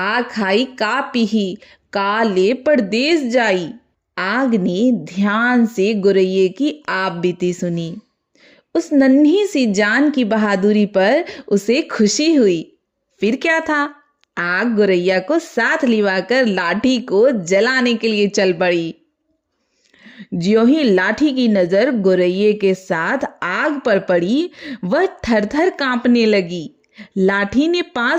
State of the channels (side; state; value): both; identical; correlation 1.00